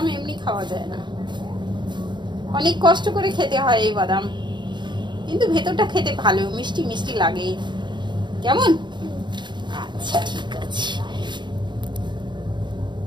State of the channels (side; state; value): left; late; 0.22 ms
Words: এমনি খাওয়া যায় না, অনেক কষ্ট করে খেতে হয় এই বাদাম, কিন্তু ভেতরটা খেতে ভালো, মিষ্টি মিষ্টি লাগে। কেমন? আচ্ছা ঠিক আছে,